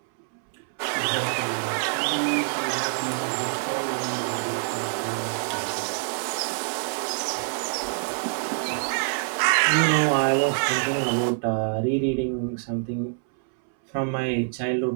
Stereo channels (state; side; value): silent; left; 61 dB below the other